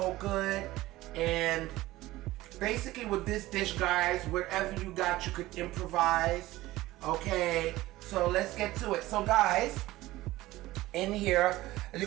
good. And basically with this dish, guys, whatever you got, you could improvise. Okay, so let's get to it. So guys, in here, as you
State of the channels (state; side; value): quieter; left; 17.4 dB